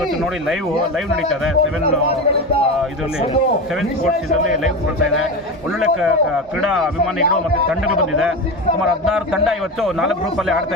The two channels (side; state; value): both; normal; correlation 0.22